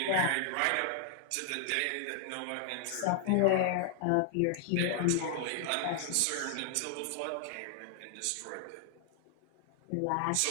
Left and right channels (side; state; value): both; different; correlation -0.01